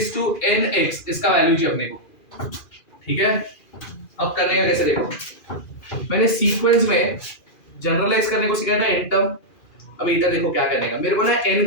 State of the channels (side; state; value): right; late; 2.4 ms